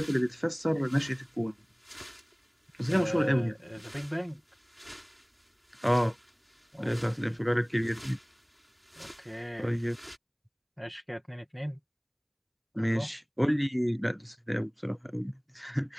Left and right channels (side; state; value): both; identical; correlation 1.00